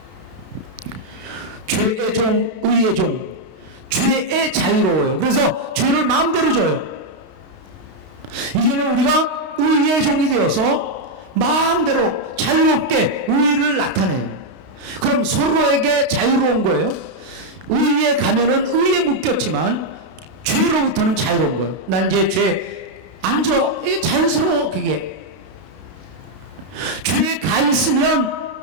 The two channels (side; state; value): left; late; 32 ms